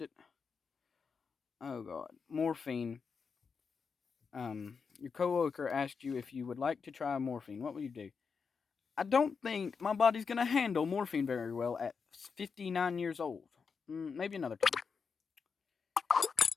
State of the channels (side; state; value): right; quieter; 5.6 dB